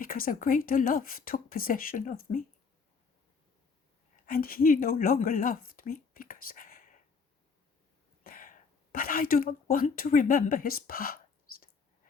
a greater love took possession of me. And he no longer loved me because... But I do not want to remember his past.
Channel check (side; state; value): right; quieter; 5.2 dB